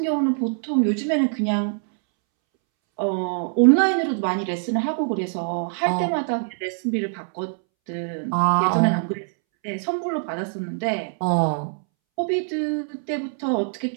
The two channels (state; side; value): silent; left; 63 dB below the other